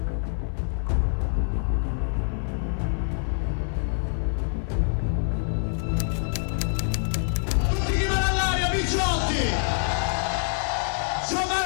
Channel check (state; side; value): silent; right; 61 dB below the other